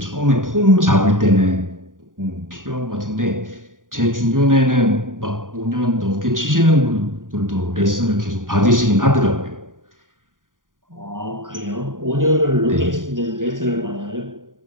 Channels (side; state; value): left; late; 0.89 ms